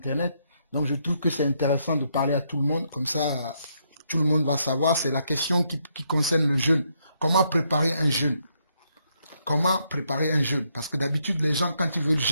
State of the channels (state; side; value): inverted; both; correlation -0.76